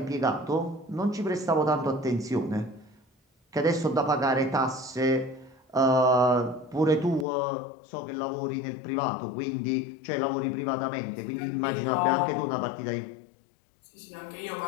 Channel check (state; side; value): drops out; right; at 7.2 s